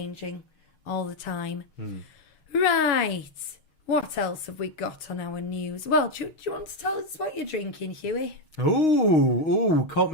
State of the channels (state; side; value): late; right; 6.4 ms